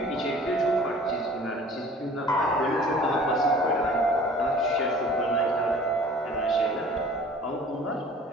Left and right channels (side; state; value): both; normal; correlation 0.48